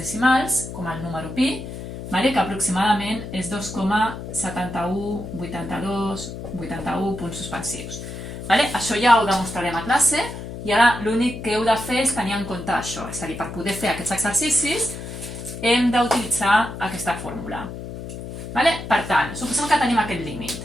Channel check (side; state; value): left; noise; hum, 9 dB below the sound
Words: com el número pi, que aproximadament és 2,718281 punts suspensius. Això ja ho demostrarem a classe i ara l'únic que heu de fer és tenir en compte això. És a dir, per poder fer aquests exercicis hem d'utilitzar aquesta fórmula. Per tant, suposem que tenim aquest límit.